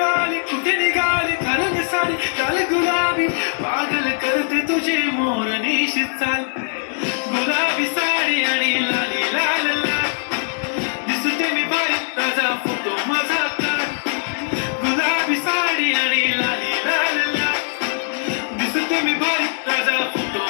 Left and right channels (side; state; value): right; silent; digital silence